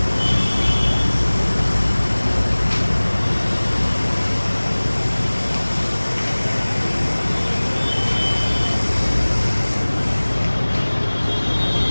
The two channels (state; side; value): inverted; both; correlation -1.00